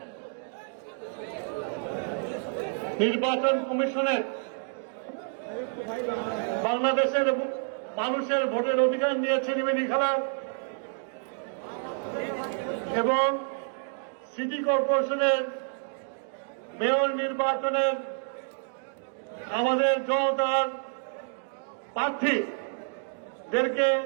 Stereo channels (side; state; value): left; silent; 59 dB below the other